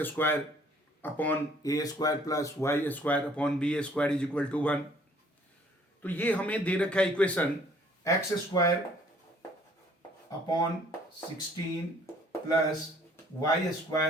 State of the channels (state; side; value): normal; both; correlation 0.59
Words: square upon a square plus y square upon b square is equal to 1। तो ये हमें दे रखा है equation x square upon 16 plus y